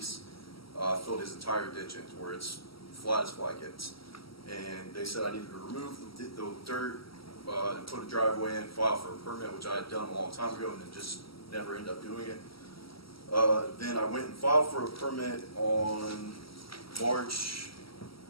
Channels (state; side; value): late; right; 0.75 ms